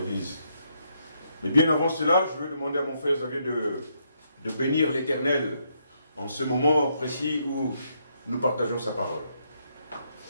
Mais bien avant cela, je veux demander à mon frère Xavier de bénir l'Éternel en ce moment précis où nous partageons sa parole.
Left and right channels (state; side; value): inverted; both; correlation -0.76